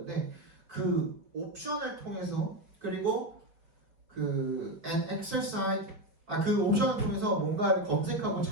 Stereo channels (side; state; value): left; late; 5.0 ms